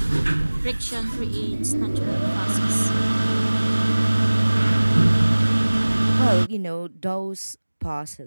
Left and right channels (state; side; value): inverted; both; correlation -1.00